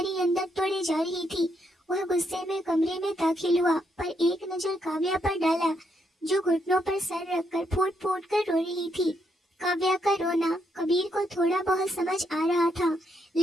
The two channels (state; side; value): normal; both; correlation 0.77